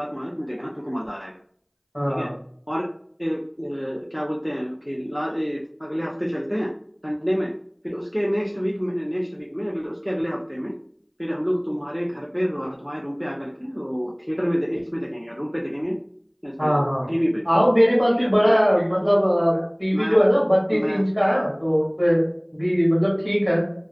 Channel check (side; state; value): both; identical; correlation 1.00